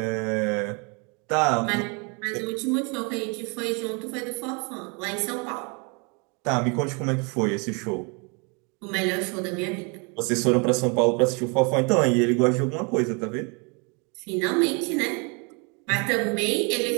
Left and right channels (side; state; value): left; quieter; 33.2 dB